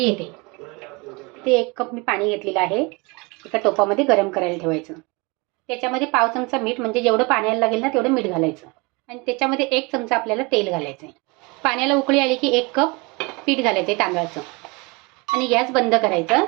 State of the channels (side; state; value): left; quieter; 27.5 dB